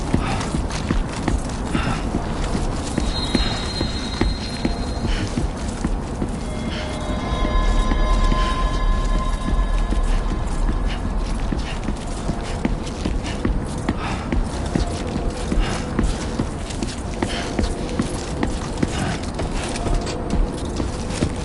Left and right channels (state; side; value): identical; both; correlation 1.00